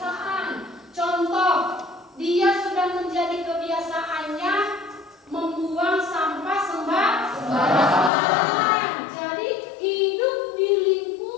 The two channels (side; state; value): right; drops out; at 8.1 s